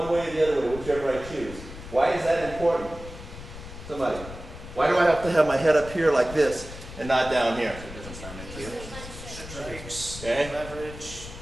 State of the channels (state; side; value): noise; left; rumble, 13 dB below the sound